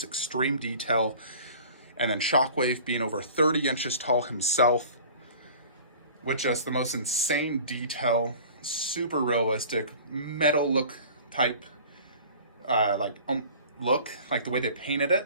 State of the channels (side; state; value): both; inverted; correlation -0.45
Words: extreme detail. And then Shockwave being over 30 inches tall himself, with just the most insane detail, super realistic, metal look type, look, like the way they painted